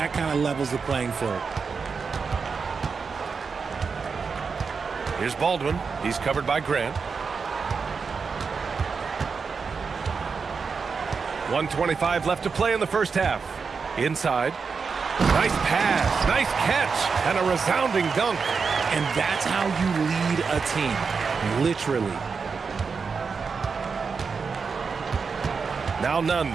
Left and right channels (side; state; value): left; quieter; 5.3 dB